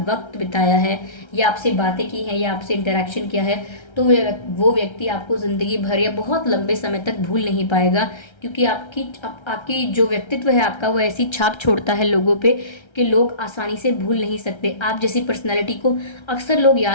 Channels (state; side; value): late; right; 1.3 ms